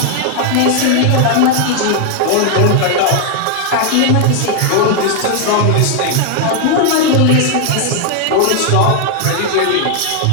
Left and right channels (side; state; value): both; different; correlation 0.00